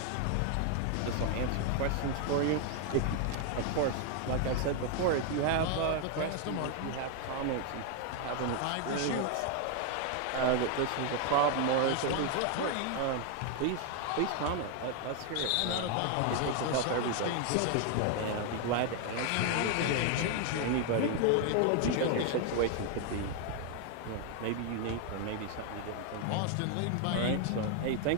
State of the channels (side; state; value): both; different; correlation 0.01